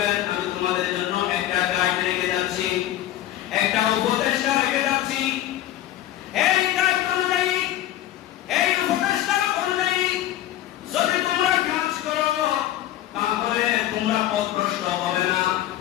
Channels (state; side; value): quieter; right; 13.4 dB